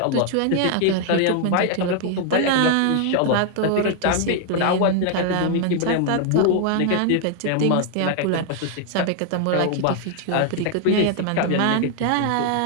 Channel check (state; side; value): different; both; correlation 0.00